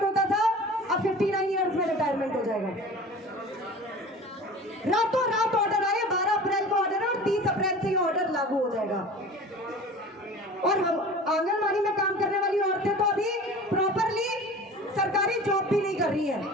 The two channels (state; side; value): normal; both; correlation 0.39